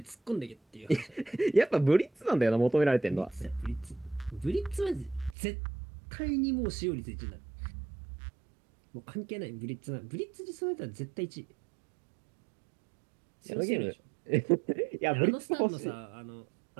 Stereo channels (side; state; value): left; drops out; at 5.4 s